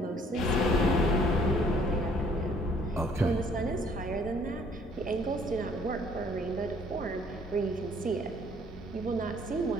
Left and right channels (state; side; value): normal; both; correlation 0.60